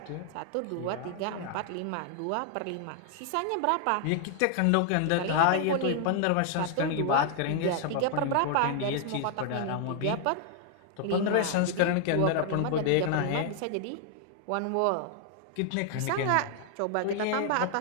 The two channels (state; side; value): different; both; correlation 0.00